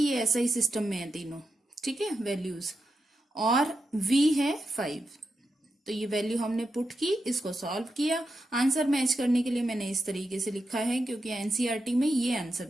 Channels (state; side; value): normal; both; correlation 0.87